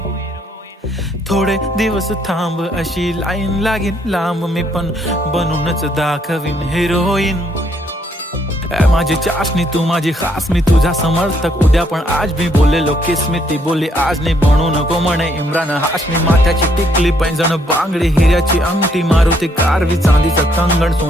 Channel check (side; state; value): both; normal; correlation 0.70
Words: थोडे दिवस थांब अशी लाईन लागेल लांब, मी पण बनूनच दाखवीन हिरोईन. माझी चाशनी तू माझी खास, मी तुझा समर्थक उद्या पण आज. मी बोललेलो किस मी ती बोली आज नाही. बनू नको म्हणे इम्रान हाशमी. माथ्याची टिकली पैंजण बांगडी, हिऱ्याची अंगठी, मारुती कारवी, चांदीचं कंगण,